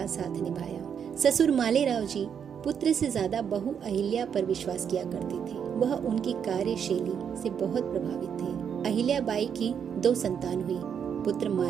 साथ निभाया। ससुर मालेराव जी पुत्र से ज्यादा बहू अहिल्या पर विश्वास किया करते थे। वह उनकी कार्यशैली से बहुत प्रभावित थे। अहिल्या बाई की 2 संतान हुई, पुत्र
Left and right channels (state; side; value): quieter; left; 7.7 dB